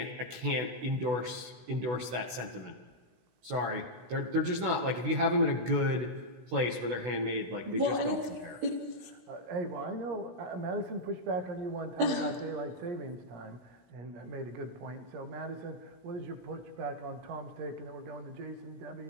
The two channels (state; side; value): late; left; 16 ms